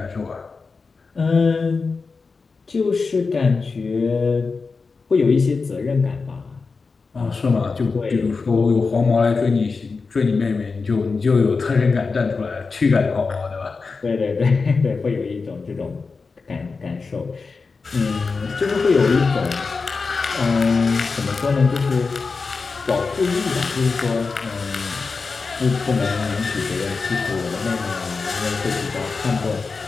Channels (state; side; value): quieter; right; 4.5 dB